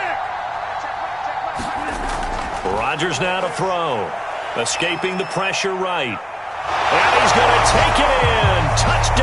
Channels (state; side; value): identical; both; correlation 1.00